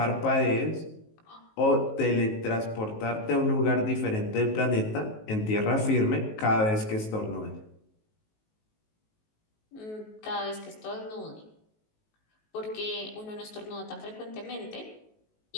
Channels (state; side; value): late; right; 19 ms